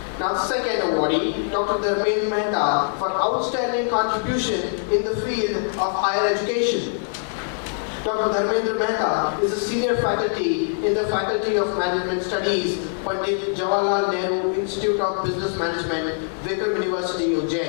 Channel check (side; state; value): right; silent; digital silence